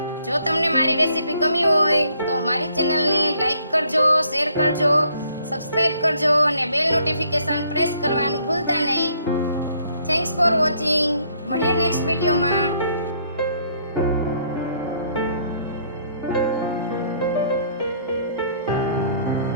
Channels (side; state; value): both; inverted; correlation -0.66